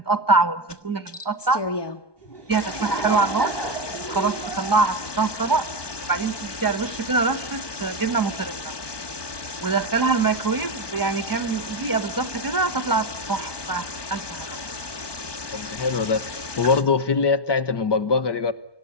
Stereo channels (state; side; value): late; right; 1.2 ms